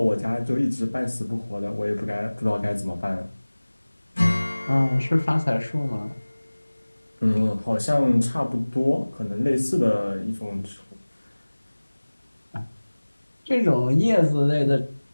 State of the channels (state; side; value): inverted; both; correlation -1.00